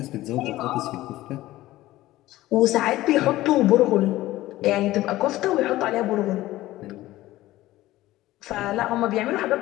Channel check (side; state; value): right; quieter; 16.4 dB